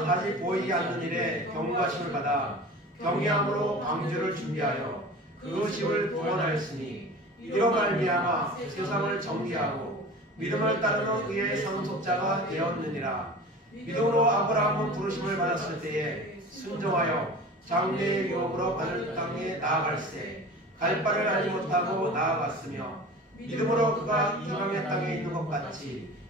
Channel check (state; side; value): normal; both; correlation 0.38